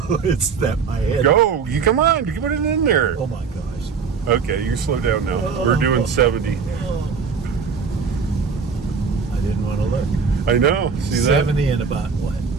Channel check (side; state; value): left; quieter; 5.6 dB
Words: It's that my head. Go! You come on, you put it in there. Oh my gosh. Okay, you slow down now. We're doing 70. I didn't want to look. I know. See that? 70 in about what?